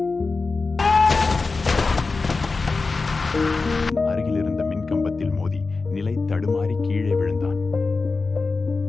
அருகில் இருந்த மின்கம்பத்தில் மோதி நிலை தடுமாறி கீழே விழுந்தான்.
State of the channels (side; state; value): right; quieter; 4.0 dB